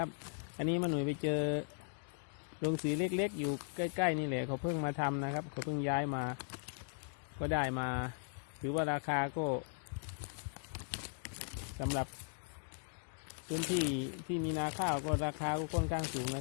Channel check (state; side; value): silent; right; digital silence